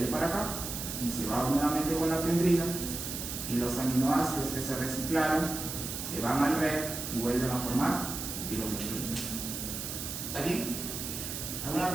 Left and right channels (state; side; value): noise; right; hiss, 6 dB below the sound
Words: para acá y se va nuevamente con la pendrina, y los aminoácidos que se reciclaron se van al red y vuelven a formar tiroglobulina. ¿Está bien? ¿Alguna